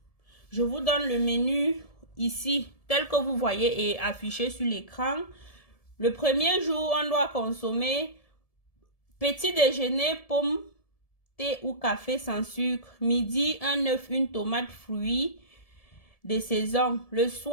Je vous donne le menu ici, tel que vous voyez et affiché sur l'écran. Le premier jour, on doit consommer petit déjeuner, pommes, thé ou café sans sucre. Midi, un œuf, une tomate, fruits de saison. Le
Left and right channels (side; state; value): right; late; 1.7 ms